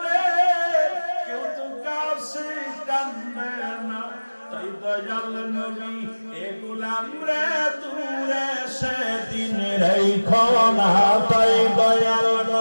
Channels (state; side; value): inverted; both; correlation -1.00